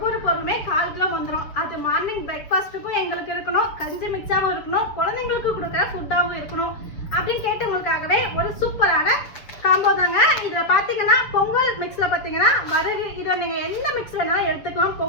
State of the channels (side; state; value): right; late; 7.0 ms